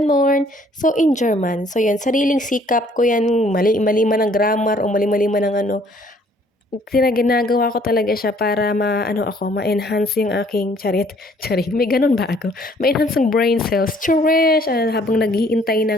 So, in German. So, yan, sariling sikap ko yan, mali-mali man ang grammar o mali-mali man ang ginagawa ko talaga siya para ma-ano ako, ma-enhance yung aking charit, may gano'n ba ako? Ma-enhance yung brain cells, charish! Habang naghihintay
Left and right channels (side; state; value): both; normal; correlation 0.60